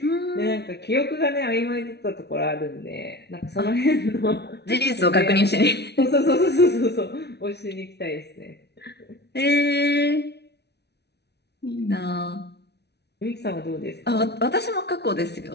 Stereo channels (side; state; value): right; late; 0.49 ms